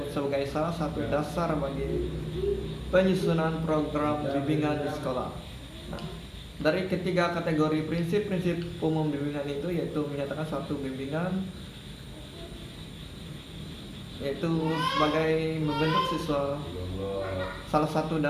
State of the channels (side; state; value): both; identical; correlation 1.00